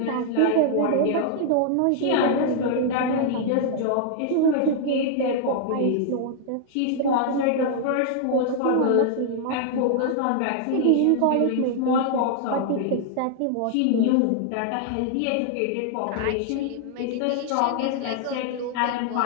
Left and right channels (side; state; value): both; different; correlation 0.00